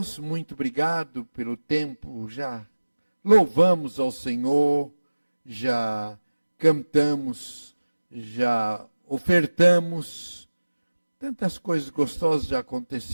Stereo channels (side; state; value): both; inverted; correlation -1.00